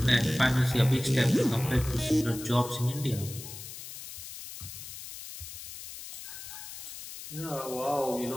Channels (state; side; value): noise; left; hiss, 11 dB below the sound